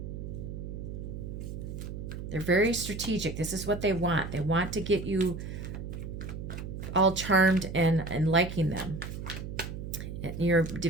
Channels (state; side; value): noise; right; hum, 7 dB below the sound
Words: They're very strategic. This is what they want. They want to get you all charmed and liking them. You're